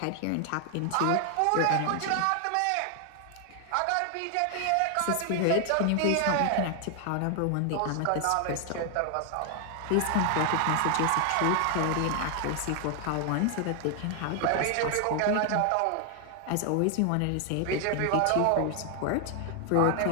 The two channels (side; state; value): both; different; correlation 0.00